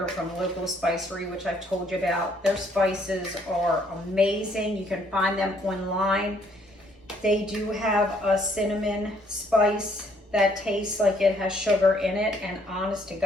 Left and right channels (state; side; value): normal; both; correlation 0.66